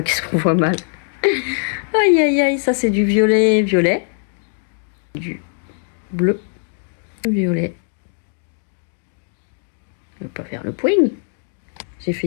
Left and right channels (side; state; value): right; silent; 60 dB below the other